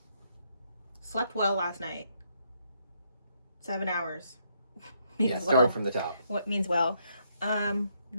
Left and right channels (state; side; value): inverted; both; correlation -0.75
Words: Slept well last night. 7 hours. Yeah, starting from the top. What means well.